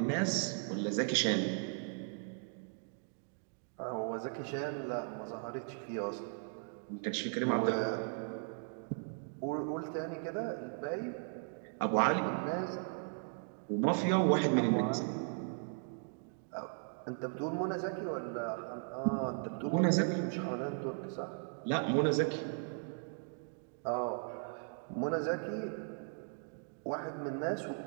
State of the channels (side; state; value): left; silent; 53 dB below the other